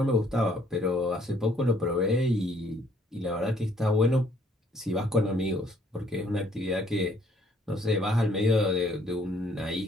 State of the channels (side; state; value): both; normal; correlation 0.64